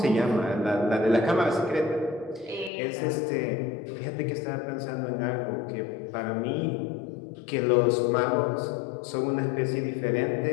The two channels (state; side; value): drops out; right; at 2.7 s